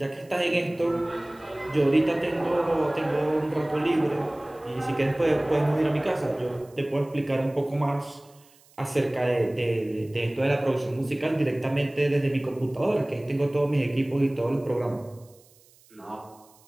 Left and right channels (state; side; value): noise; right; hiss, 29 dB below the sound